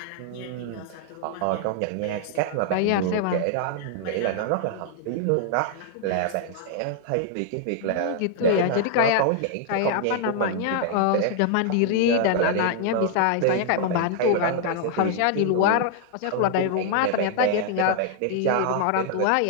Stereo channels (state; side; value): different; both; correlation -0.01